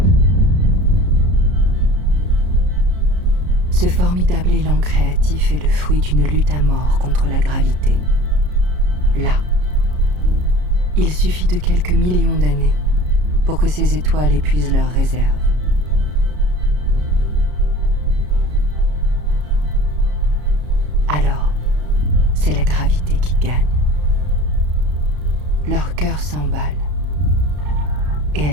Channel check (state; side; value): late; left; 33 ms